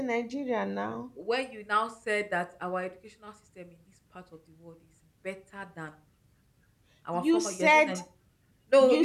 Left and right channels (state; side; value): identical; both; correlation 1.00